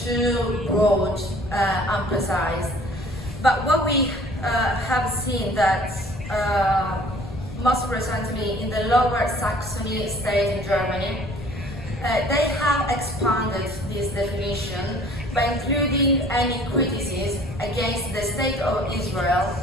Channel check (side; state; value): left; noise; rumble, 12 dB below the sound